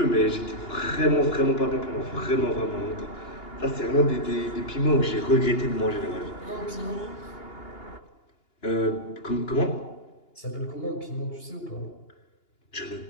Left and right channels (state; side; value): late; right; 2.8 ms